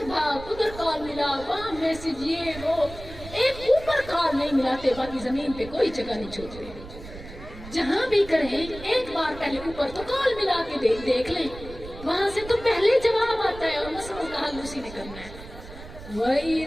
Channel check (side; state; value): right; noise; rumble, 14 dB below the sound